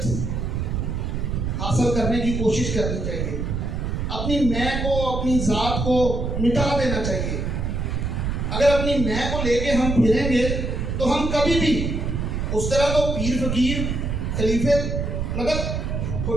حاصل کرنے کی کوشش کرنی چاہیے. اپنی میں کو, اپنی ذات کو مٹا دینا چاہیے. اگر اپنی میں کو لے کے ہم پھریں گے تو ہم کبھی بھی اس طرح تو پیر فقیر خلیفے مطلب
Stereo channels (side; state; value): right; noise; rumble, 2 dB below the sound